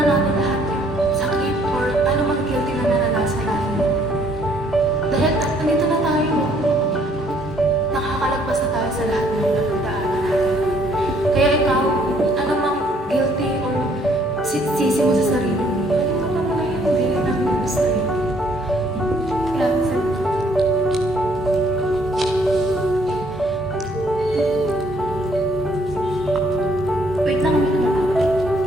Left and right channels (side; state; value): both; normal; correlation 0.64